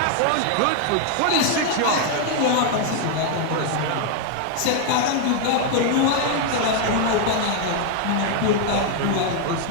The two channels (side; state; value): both; different; correlation 0.00